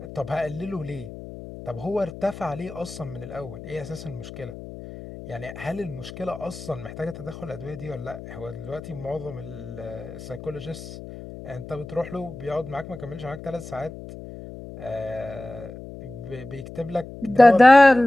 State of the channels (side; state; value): left; noise; hum, 13 dB below the sound